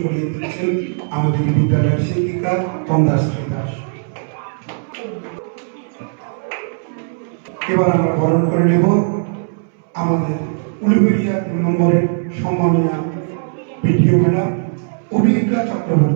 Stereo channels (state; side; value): silent; left; 67 dB below the other